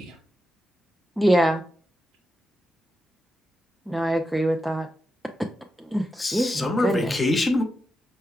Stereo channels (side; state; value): both; normal; correlation 0.88